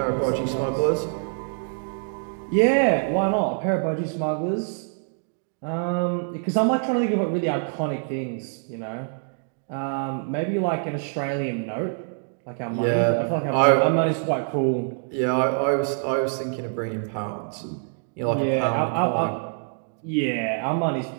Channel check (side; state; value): left; silent; digital silence